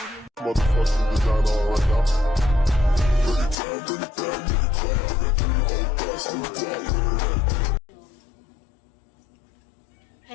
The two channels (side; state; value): right; drops out; at 3.6 s